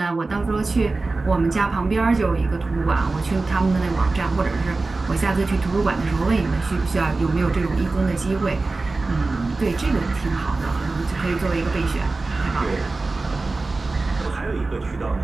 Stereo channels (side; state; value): left; quieter; 3.5 dB